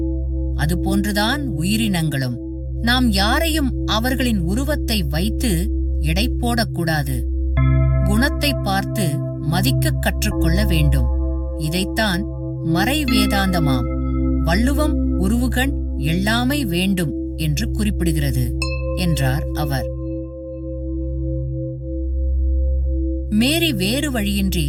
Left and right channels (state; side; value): identical; both; correlation 1.00